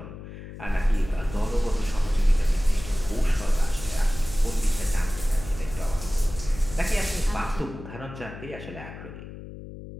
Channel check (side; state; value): left; noise; hum, 13 dB below the sound